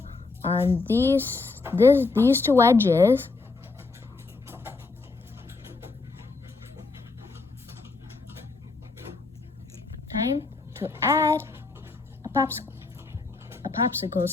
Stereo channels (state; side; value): quieter; right; 3.9 dB